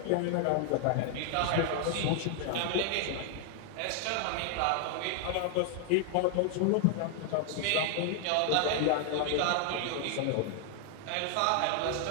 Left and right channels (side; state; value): both; different; correlation 0.00